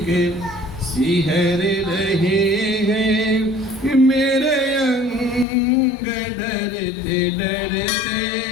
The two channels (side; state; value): right; drops out; at 5.5 s